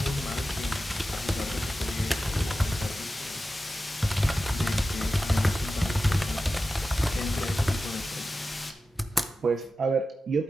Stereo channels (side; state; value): both; normal; correlation 0.93